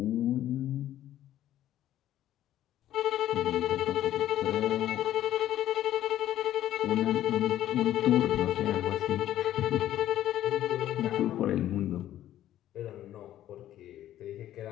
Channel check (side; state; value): right; quieter; 12.6 dB